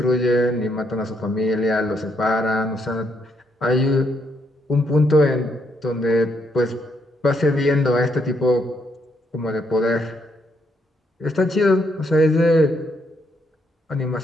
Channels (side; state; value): both; normal; correlation 0.75